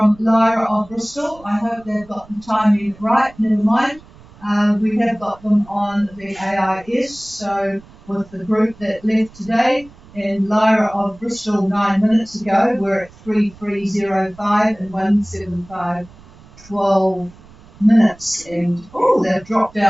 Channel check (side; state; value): right; noise; rumble, 23 dB below the sound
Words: Lyra of Bristol. I hope they've got the timing right. Never mind. We have got them on the AIS, so with the group that left today, and Lyra of Bristol 9 minutes ago, we're at 3305 and 175 12 minutes, and they've dropped